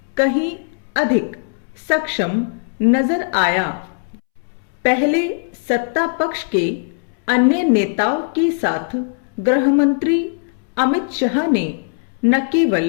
कहीं अधिक सक्षम नजर आया। पहले सत्ता पक्ष के अन्य नेताओं के साथ गृह मंत्री अमित शाह ने न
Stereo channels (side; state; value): right; silent; 66 dB below the other